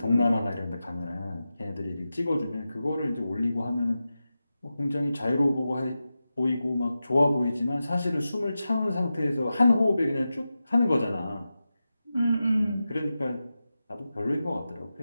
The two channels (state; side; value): inverted; both; correlation -0.92